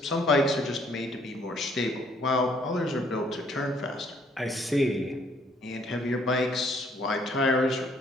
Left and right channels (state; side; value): normal; both; correlation 0.64